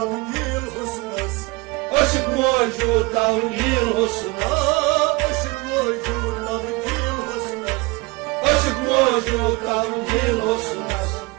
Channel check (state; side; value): quieter; left; 24.8 dB